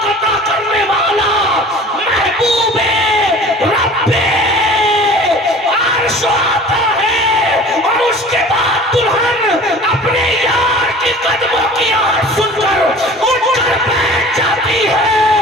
عطا کرنے والا محبوب رب عرش آتا ہے. اور اس کے بعد دلہن اپنے یار کے قدموں کی آواز سن کر اٹھ کر بیٹھ جاتی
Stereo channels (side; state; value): both; normal; correlation 0.44